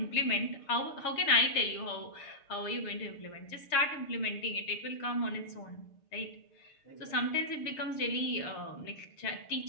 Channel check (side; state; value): right; late; 6.6 ms